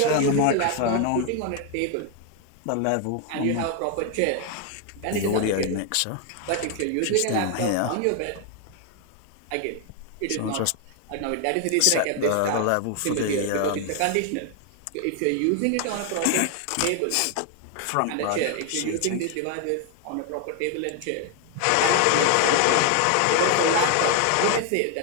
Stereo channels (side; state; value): both; different; correlation 0.00